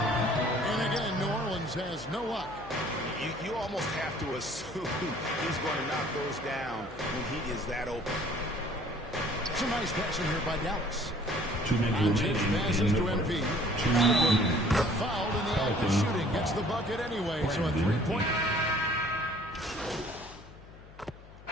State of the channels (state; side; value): noise; left; hum, 19 dB below the sound